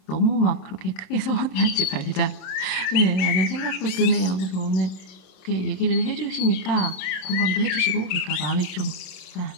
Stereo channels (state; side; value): late; right; 27 ms